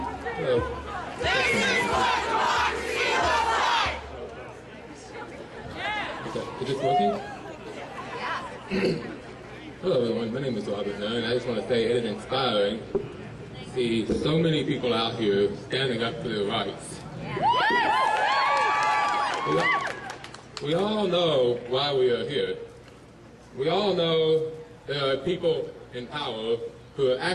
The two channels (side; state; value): both; identical; correlation 1.00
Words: This is what democracy looks like! Is this working? Hello everyone, my name is Robert Nunn, and I just want to say it is inspiring to see so many people out here standing up for their rights. We all know why we are here. We all know there are people in power who are